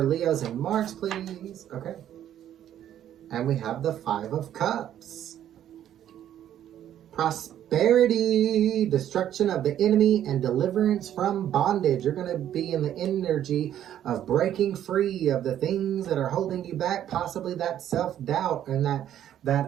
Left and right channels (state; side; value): quieter; left; 11.0 dB